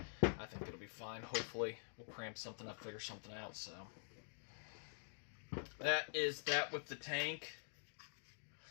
I think it'll be fine. Hopefully we'll cramp something up, figure something out. So that is that with the tank.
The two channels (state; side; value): silent; right; digital silence